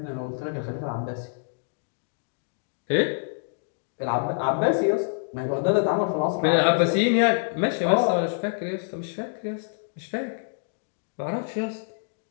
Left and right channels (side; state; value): right; silent; digital silence